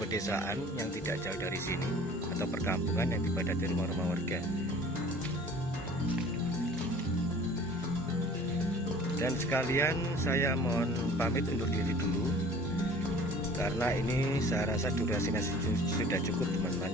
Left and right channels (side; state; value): both; normal; correlation 0.47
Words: yang tidak jauh dari sini, atau perkampungan yang dipadati rumah-rumah warga. Dan sekalian saya mohon pamit undur diri dulu, karena ini saya rasa durasinya sudah cukup